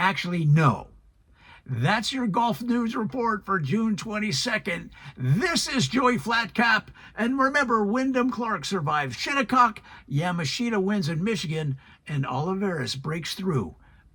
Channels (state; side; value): identical; both; correlation 1.00